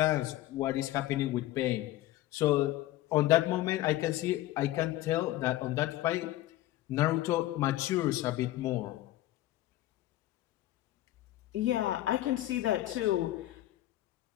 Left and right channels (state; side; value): quieter; right; 15.3 dB